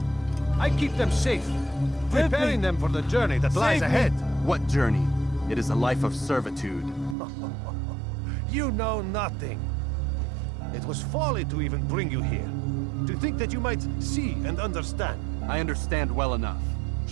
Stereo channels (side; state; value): left; drops out; at 7.2 s